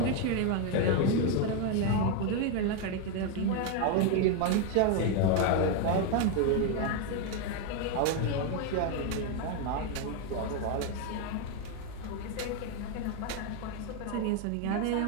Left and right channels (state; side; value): different; both; correlation 0.02